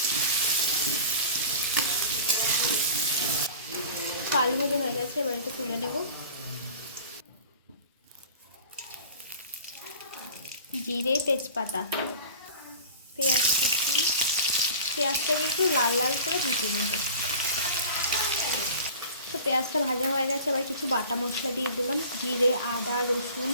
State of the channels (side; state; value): both; inverted; correlation -0.41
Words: আলু ভাজা হয়ে গেছে, এবার এটা তুলে নেব। জিরে তেজপাতা পেঁয়াজ কুচি, পেঁয়াজটাকে একটু লাল লাল করে ভেজে নেব। তো পেঁয়াজটা ভাজা হয়ে গেছে, এবার কিছু বাটা মশলা দিয়ে দিলাম, জিরে আদা রসুন